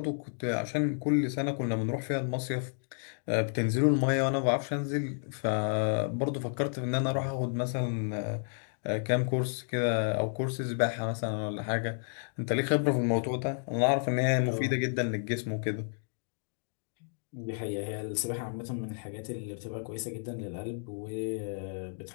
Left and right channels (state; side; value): silent; right; digital silence